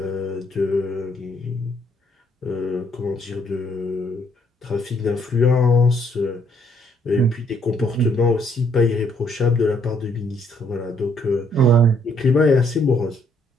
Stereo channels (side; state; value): both; normal; correlation 0.68